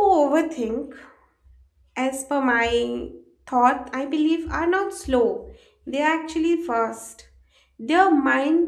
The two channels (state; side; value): identical; both; correlation 1.00